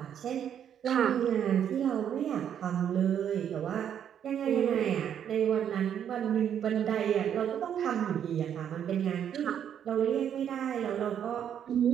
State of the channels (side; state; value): left; quieter; 9.1 dB